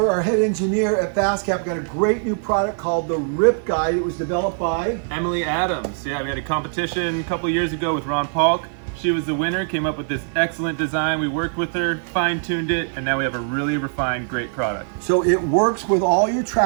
our head engineer at FastCap, got a great new product called the Rip Guide. It was developed by Emily Adams. Yeah, we had a competition a couple years ago with Ron Paulk. She was the winner, came up with this excellent design. We worked with her, fine-tuned it, and now we have a really refined, great product. So it works with all your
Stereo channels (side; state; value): left; silent; digital silence